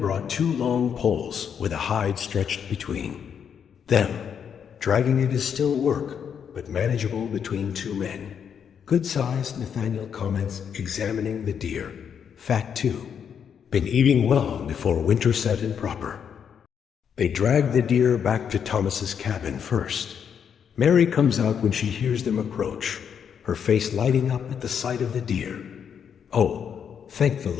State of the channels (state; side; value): quieter; right; 7.7 dB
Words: 2 long poles with a hide stretched between them. Dragging it is still work, but manageable between 2 men. Good size, Nathaniel comments, examining the deer. Fat too. Been eating well before winter set in proper. They drag the deer back to Thomas's cabin first. Mary comes out when she hears them approach, her face lighting up at the sight of the deer. Oh, thank the